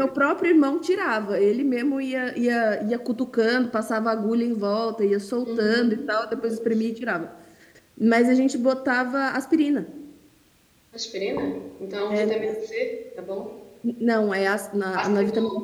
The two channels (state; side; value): identical; both; correlation 1.00